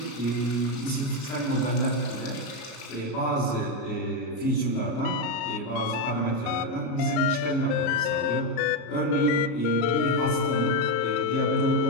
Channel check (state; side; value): late; right; 34 ms